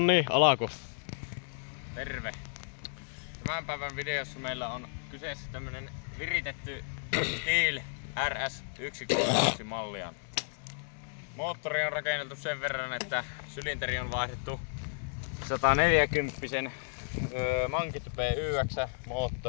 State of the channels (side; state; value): right; silent; digital silence